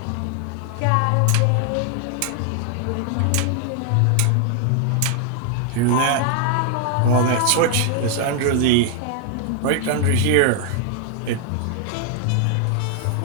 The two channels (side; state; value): both; different; correlation 0.00